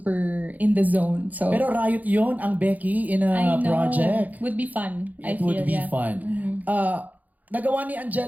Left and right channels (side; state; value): left; late; 0.080 ms